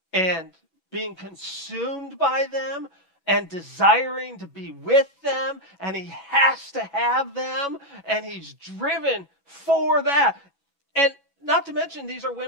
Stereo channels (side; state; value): right; late; 6.1 ms